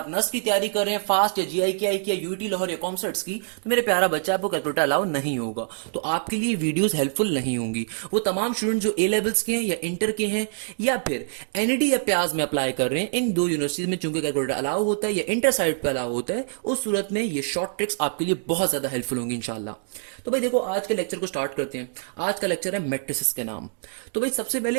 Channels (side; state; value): left; silent; digital silence